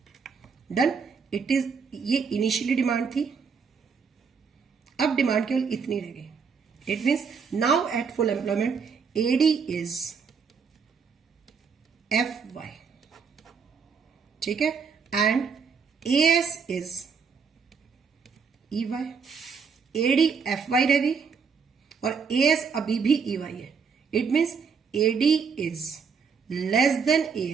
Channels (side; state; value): left; quieter; 5.8 dB